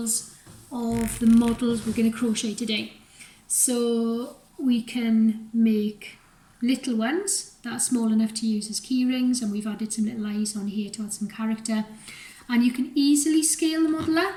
of the models we're going to crochet today. So we can make little ones that are small enough to use as key rings, and we've added some little eyes on here to add some character, and you can easily scale the model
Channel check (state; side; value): identical; both; correlation 1.00